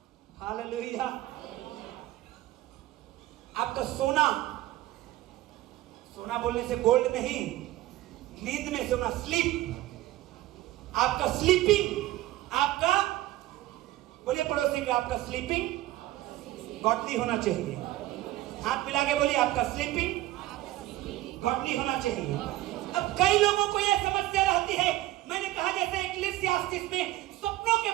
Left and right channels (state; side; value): quieter; left; 16.3 dB